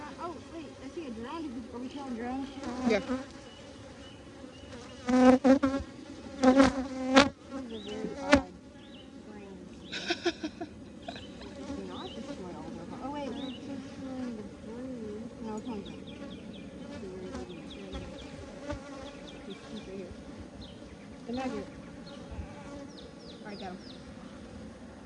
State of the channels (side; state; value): both; identical; correlation 1.00